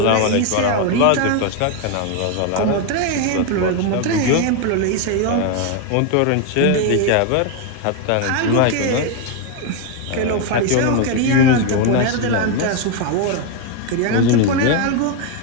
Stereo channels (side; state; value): both; different; correlation 0.01